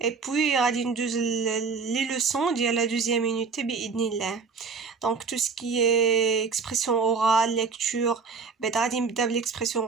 اي بوي غادي ندوز لي لوسون ديال لا دوزيام يونيتي باذن الله. دونك تو سكي اكسبرسيون اورال ليكتور بعد غادي نبدا بالاكسبرسيون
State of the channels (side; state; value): left; quieter; 5.0 dB